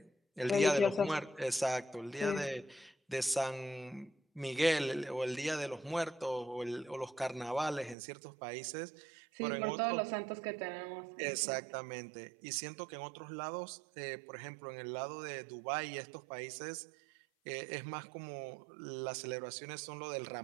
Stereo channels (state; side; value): drops out; left; at 8.0 s